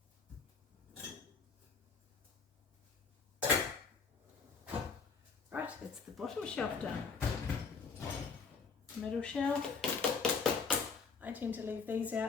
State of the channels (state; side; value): quieter; right; 5.2 dB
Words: Right, that's the bottom shelf done. Middle shelf. I tend to leave these